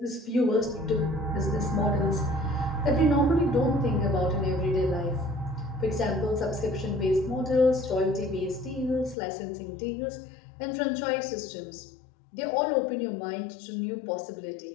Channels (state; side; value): drops out; right; at 9.2 s